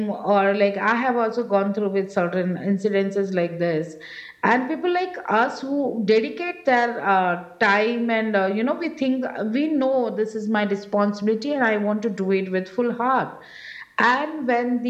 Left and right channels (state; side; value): identical; both; correlation 1.00